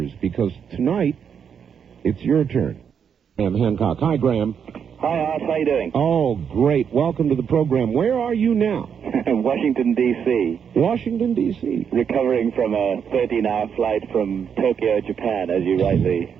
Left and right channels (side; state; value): left; quieter; 7.4 dB